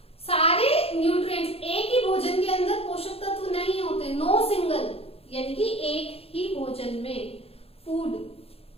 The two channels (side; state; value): right; late; 0.28 ms